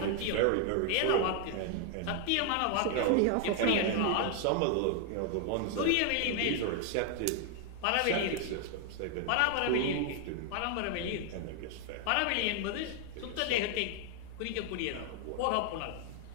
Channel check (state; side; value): different; both; correlation 0.00